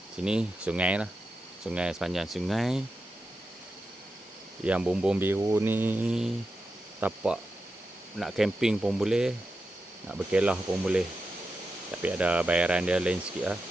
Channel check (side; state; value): both; normal; correlation 0.89